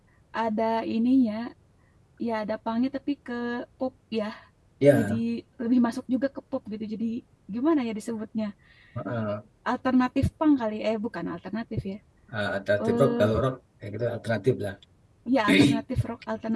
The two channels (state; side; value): identical; both; correlation 1.00